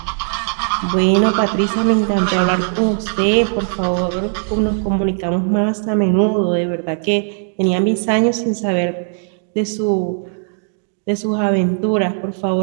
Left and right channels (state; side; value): silent; left; 55 dB below the other